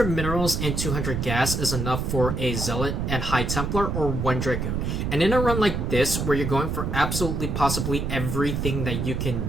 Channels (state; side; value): noise; right; rumble, 2 dB below the sound